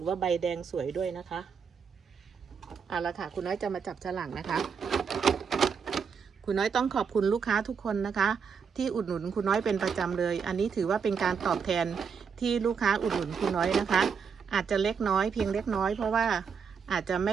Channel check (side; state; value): left; quieter; 6.3 dB